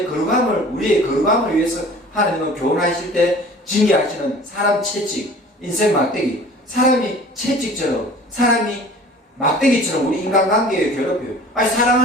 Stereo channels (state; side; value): normal; both; correlation 0.45